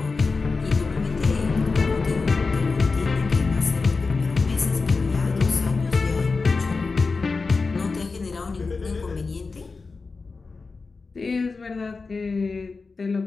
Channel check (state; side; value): quieter; right; 4.2 dB